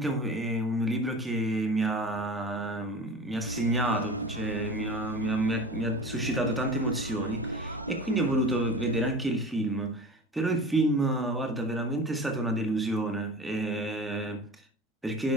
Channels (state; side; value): normal; both; correlation 0.35